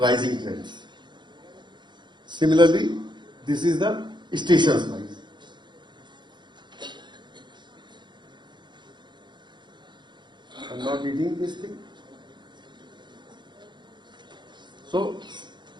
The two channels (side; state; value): left; late; 0.22 ms